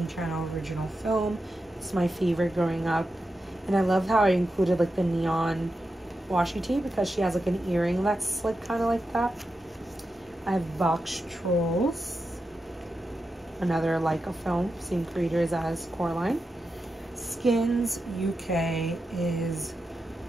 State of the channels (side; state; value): both; normal; correlation 0.89